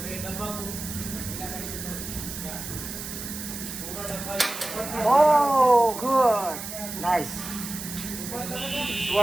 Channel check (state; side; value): noise; right; hiss, 8 dB below the sound